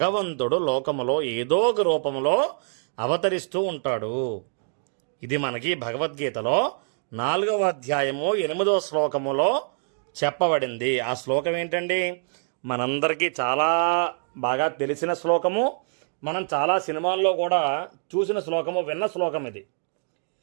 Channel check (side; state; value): left; silent; digital silence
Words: లోకములో ఏదో ఒక రూపంలో అవతరిస్తూ ఉంటాడు. ఇది మనకి భగవద్గీతలో 4వ అధ్యాయము 8వ శ్లోకములో చెప్పబడింది. ఆ శ్లోకం ఏంటండి? మనందరికీ చాలా బాగా తెలిసిన శ్లోకము, మనం చాలా సినిమాల్లో కూడా చూసిన శ్లోకము, విన్న శ్లోకం ఇది.